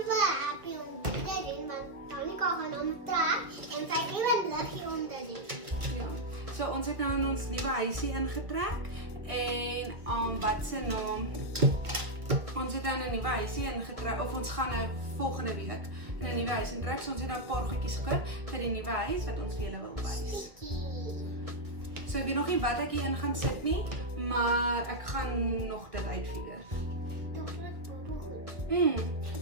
happy om dit te doen, want Tanika gaan hom trek en sy het ewe liggie onder dit. Ja. So ons het nou in ons nuwe huisie ingetrek en wat se naam? Ons het nou in 'n nuwe huisie ingetrek of ons gaan nou volgende week in 'n nuwe huis intrek. So ons het nou 'n paar goedjies gekoop vir die nuwe huis wat ons vir julle wil wys. So ek weet nog nie wat ek hier in gaan sit nie, maar ek gaan nog dit uitfigure. Toch dit bobo goed.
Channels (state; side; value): late; left; 1.4 ms